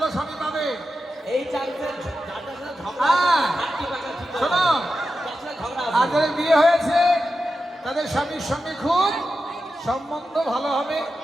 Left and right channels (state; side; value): normal; both; correlation 0.90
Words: স্বামী পাবে। এই শোনো, আর যাদের বিয়ে হয়েছে তাদের স্বামীর সঙ্গে খুব সম্বন্ধ ভালো হবে।